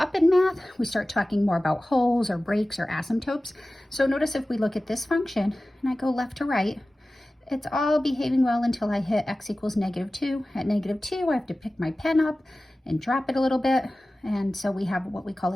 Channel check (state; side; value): normal; both; correlation 0.96